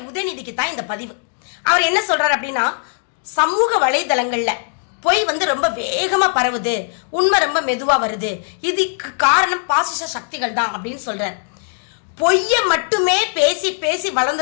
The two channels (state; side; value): silent; right; 55 dB below the other